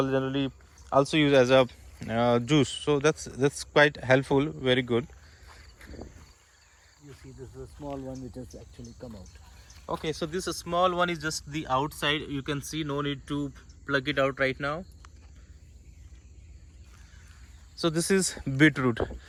generally also use as a juice. So that's quite helpful. Very good. You see, this is a small one which has actually come out. Okay, so this small one is just the outside. You can see, no need to plug it out right now. So this is beetroot.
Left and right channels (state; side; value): identical; both; correlation 1.00